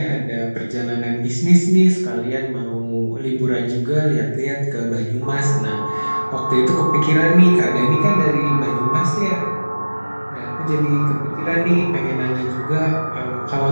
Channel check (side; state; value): both; inverted; correlation -1.00